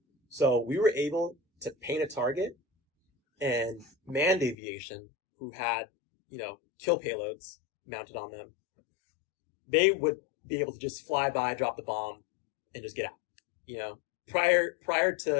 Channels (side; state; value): right; drops out; at 4.5 s